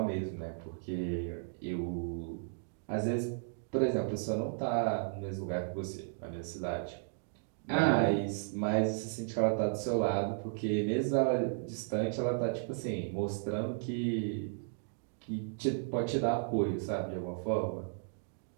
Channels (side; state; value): left; silent; digital silence